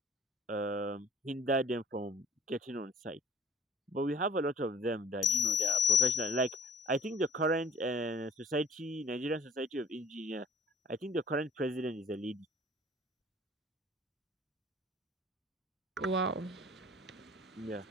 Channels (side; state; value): both; normal; correlation 0.53